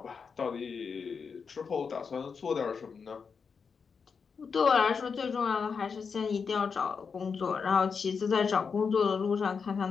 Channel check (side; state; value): right; quieter; 5.7 dB